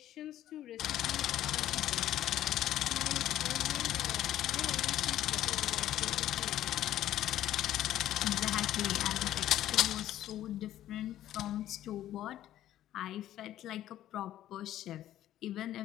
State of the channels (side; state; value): right; quieter; 12.7 dB